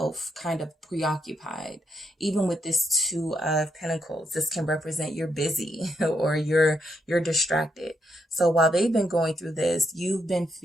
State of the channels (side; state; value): both; normal; correlation 0.78